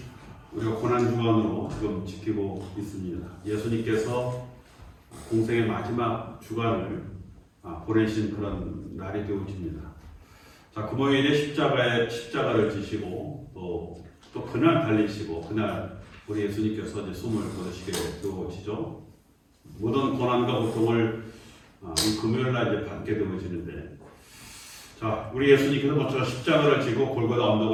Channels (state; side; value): identical; both; correlation 1.00